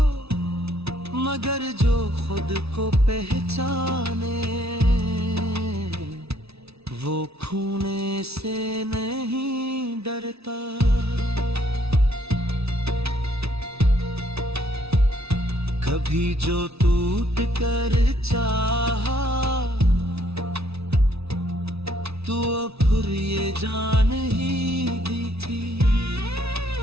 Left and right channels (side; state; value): left; late; 0.79 ms